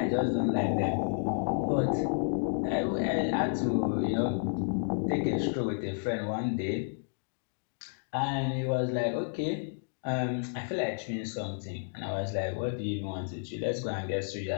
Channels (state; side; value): silent; right; digital silence